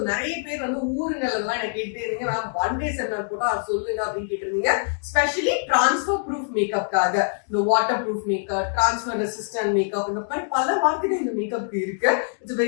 நிறைய பேர் வந்து ஊருங்களெல்லாம் என்ன கேட்டே இருந்தீங்க, மேம் ஒன் டே செமினார் போட்டா சொல்லுங்க அப்படின்னு கேட்டிருந்தீங்க. ஸ்பெஷலி டிரான்ஸ்ஃபர் ப்ரூஃப் மேக்கப்காக இந்த water proof makeup, transfer resistant makeup, இந்த மாதிரி பல வார்த்தைகள் இந்த மேக்கப் இருக்கு. It's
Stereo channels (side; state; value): right; silent; digital silence